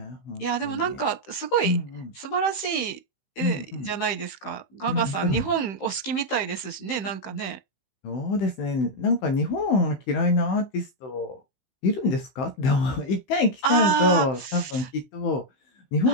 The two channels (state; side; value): late; right; 15 ms